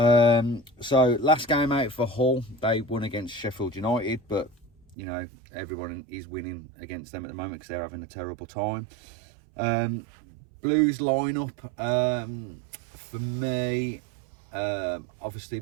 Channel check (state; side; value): drops out; left; at 5.0 s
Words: last game out for Hull, they won against Sheffield United, but everyone is winning against them at the moment because they're having a terrible time. Blues lineup, for me, obviously